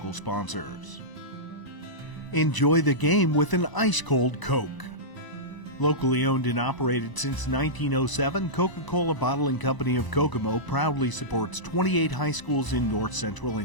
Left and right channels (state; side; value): late; right; 1.0 ms